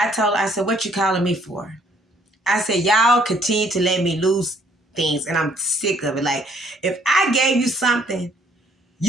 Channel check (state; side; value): normal; both; correlation 0.63